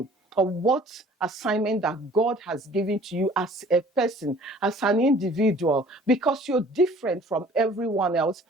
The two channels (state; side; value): normal; both; correlation 0.51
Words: or what assignment that God has given to you as a person, as an individual, because you're different from everyone else.